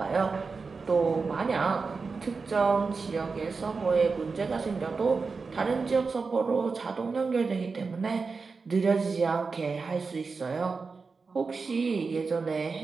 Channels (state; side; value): quieter; left; 4.6 dB